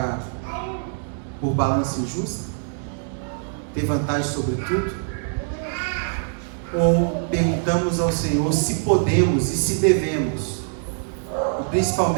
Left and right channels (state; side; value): silent; left; digital silence